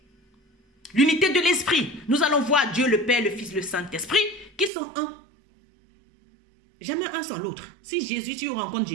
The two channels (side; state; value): left; drops out; at 4.7 s